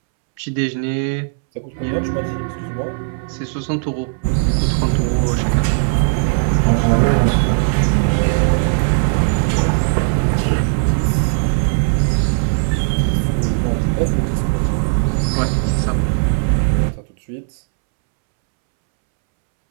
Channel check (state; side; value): silent; left; 68 dB below the other